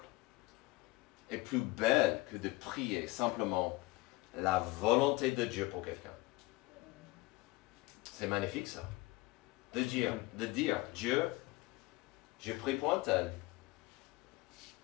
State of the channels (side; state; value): right; quieter; 21.1 dB